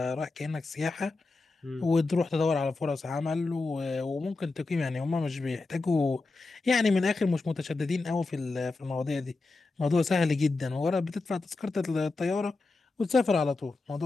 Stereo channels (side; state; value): right; quieter; 3.6 dB